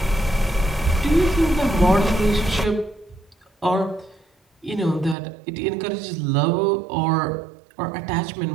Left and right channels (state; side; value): drops out; left; at 5.2 s